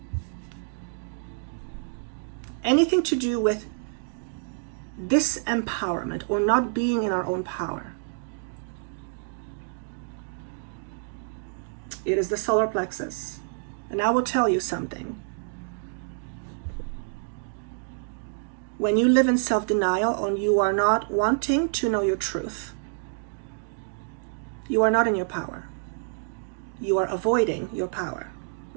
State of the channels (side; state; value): left; silent; digital silence